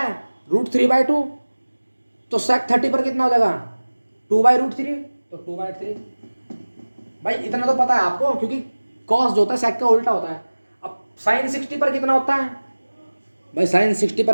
√3/2। तो सेक 30 पर कितना हो जाएगा, 2/√3। तो 2/3। भाई इतना तो पता है आपको, क्योंकि कॉस जो होता है सेक का उल्टा होता है। अब साइन 60 पर कितना होता है, भाई साइन 60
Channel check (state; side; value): inverted; both; correlation -1.00